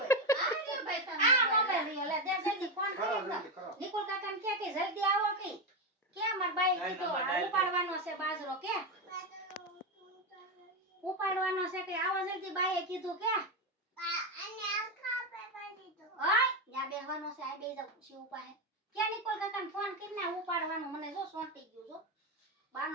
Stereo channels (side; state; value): both; normal; correlation 0.11